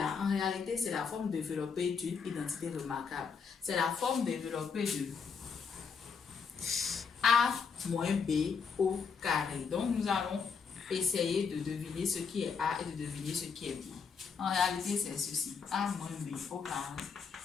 en réalité, c'est la forme développée d'une identité remarquable. C'est la forme développée de A moins B au carré. Donc, nous allons essayer de deviner ce qui est A et de deviner ce qui est B. En réalité, c'est ceci. A moins B au carré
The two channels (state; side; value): quieter; right; 5.9 dB